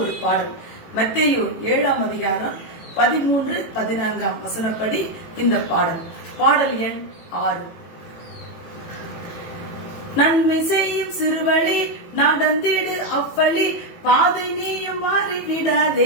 பாடல். மத்தேயு 7ஆம் அதிகாரம் 13-14 வசனப்படி இந்த பாடல். பாடல் எண் 6. நன்மை செய்யும் சிறுவழி நடந்திடு அவ்வழி, பாதை நீயும்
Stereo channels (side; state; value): right; late; 18 ms